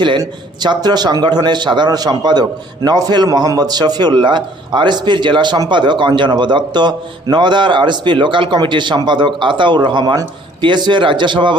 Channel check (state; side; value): normal; both; correlation 0.58